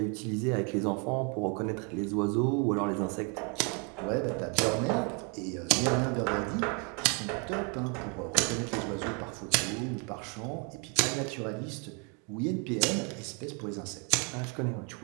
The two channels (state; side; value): quieter; left; 35.4 dB